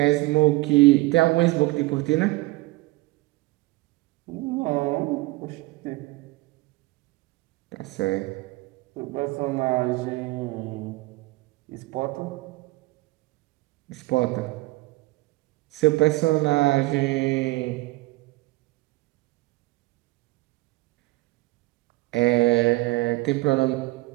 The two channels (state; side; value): quieter; left; 21.1 dB